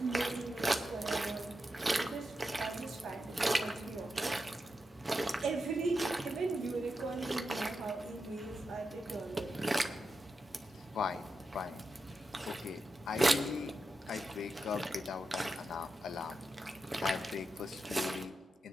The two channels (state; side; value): normal; both; correlation 0.88